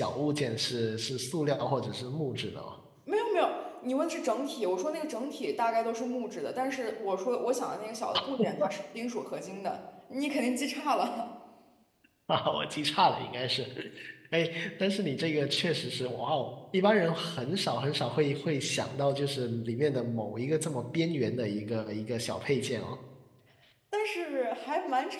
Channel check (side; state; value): both; identical; correlation 1.00